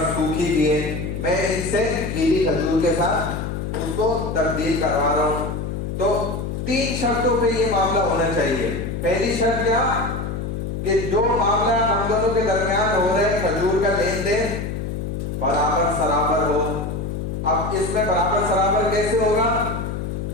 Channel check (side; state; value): left; noise; hum, 4 dB below the sound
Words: سوکھی بھی ہے، میں ان سے گیلی کھجور کے ساتھ اس کو تبدیل کروا رہا ہوں، تو 3 شرطوں پہ یہ معاملہ ہونا چاہیے۔ پہلی شرط کیا کہ جو معاملہ ہم دونوں کے درمیان ہو رہا ہے کھجور کا لین دین برابر سرابر ہو۔ اب اس میں برابر سرابر کیسے ہوگا